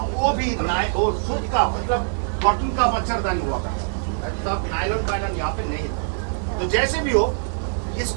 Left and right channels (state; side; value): silent; left; 59 dB below the other